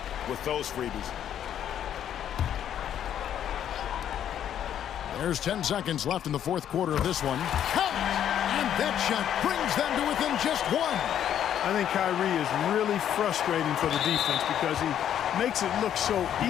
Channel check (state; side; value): quieter; right; 10.0 dB